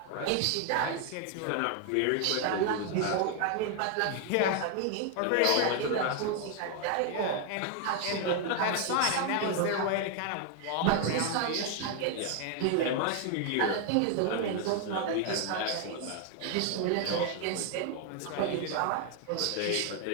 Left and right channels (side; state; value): both; different; correlation 0.00